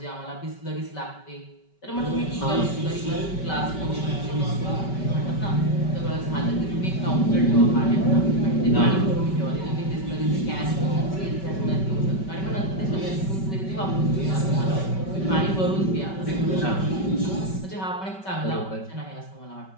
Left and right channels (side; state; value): right; late; 5.2 ms